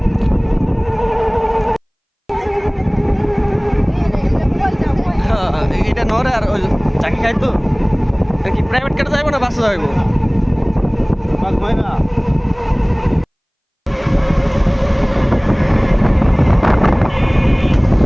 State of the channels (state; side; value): identical; both; correlation 1.00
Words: এটা নরে আর ওই চাকি খাই তো কি প্রাইভেট কারে যাইবো না বাসে যাইবো?